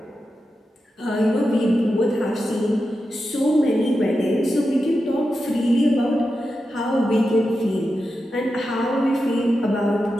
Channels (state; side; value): normal; both; correlation 0.90